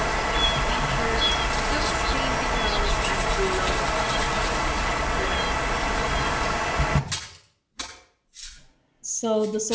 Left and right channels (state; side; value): identical; both; correlation 1.00